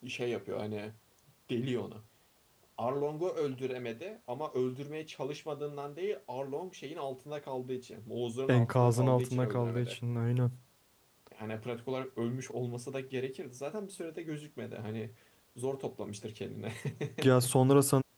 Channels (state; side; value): identical; both; correlation 1.00